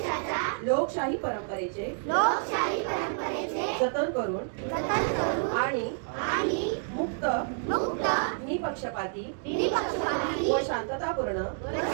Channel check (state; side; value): silent; left; digital silence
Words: लोकशाही परंपरेचे जतन करून आणि मुक्त निपक्षपाती व शांततापूर्ण